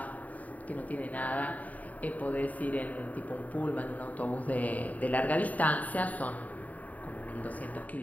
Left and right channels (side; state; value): right; late; 0.073 ms